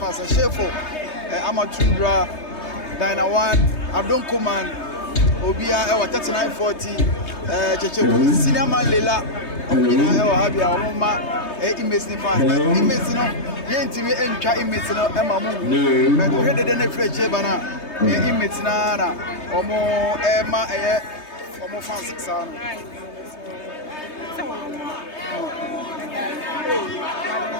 Shefo, Amatundra, Dina One, Adon Command, Obia, 3940, Cheche, Senior Man Lela, Obina, Habia, Oma, inmates in fast. Inmates no, Yentimi and Cha inmates no, Emma Moon, but we had the Fletcher Bana, inmates na, Omo Emma, Omo Fancy Sound.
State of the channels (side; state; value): right; late; 3.2 ms